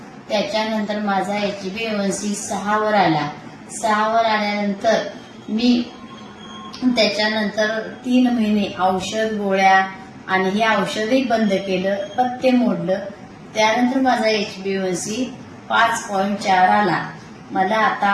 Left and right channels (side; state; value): both; identical; correlation 1.00